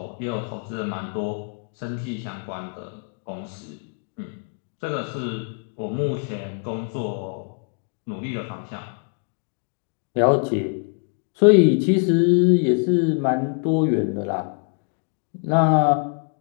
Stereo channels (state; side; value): quieter; right; 39.9 dB